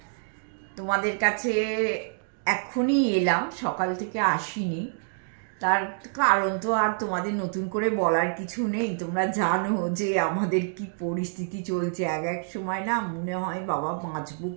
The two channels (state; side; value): silent; left; digital silence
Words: তোমাদের কাছে এখনই এলাম, সকাল থেকে আসিনি। তার কারণ তো আর তোমাদের নতুন করে বলার কিছু নেই। তোমরা জানো যে আমাদের কি পরিস্থিতি চলছে। এক এক সময় না মনে হয় বাবা বাঁচবো